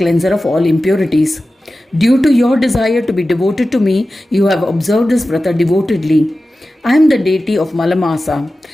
of all impurities. Due to your desire to be devoted to me, you have observed this Vrata devotedly. I am the deity of Malamasa.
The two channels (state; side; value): normal; both; correlation 0.94